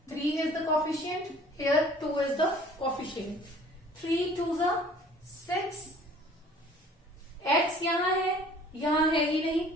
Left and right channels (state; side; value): normal; both; correlation 0.51